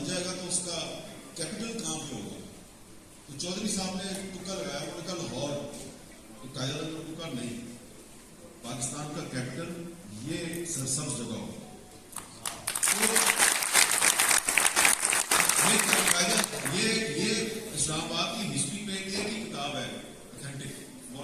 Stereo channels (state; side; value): identical; both; correlation 1.00